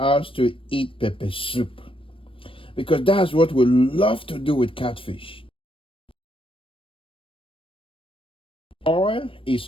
to eat pepper soup. Because that's what we love to do with catfish. Oil is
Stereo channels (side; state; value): right; late; 0.26 ms